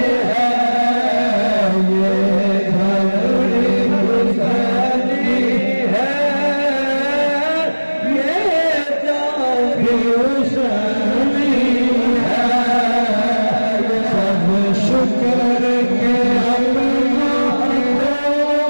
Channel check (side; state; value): both; inverted; correlation -1.00